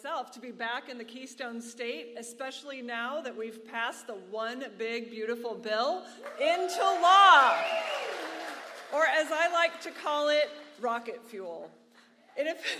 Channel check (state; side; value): identical; both; correlation 1.00